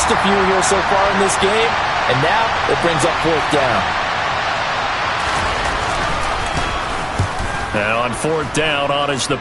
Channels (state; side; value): identical; both; correlation 1.00